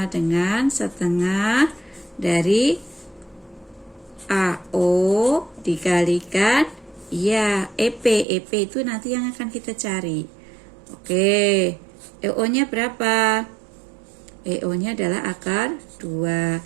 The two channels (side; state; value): left; drops out; at 8.2 s